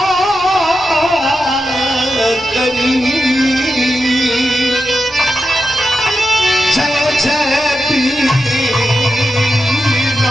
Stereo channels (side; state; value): both; normal; correlation 0.89